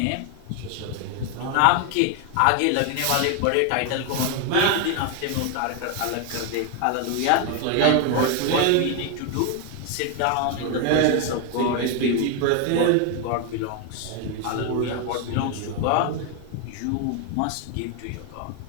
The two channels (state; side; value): different; both; correlation 0.01